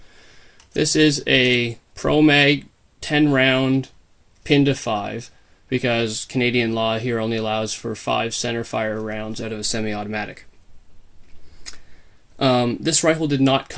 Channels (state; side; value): identical; both; correlation 1.00